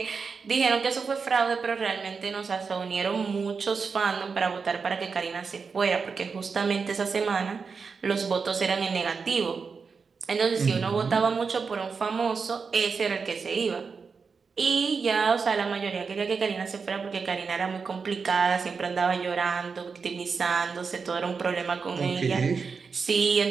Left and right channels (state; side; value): quieter; left; 5.2 dB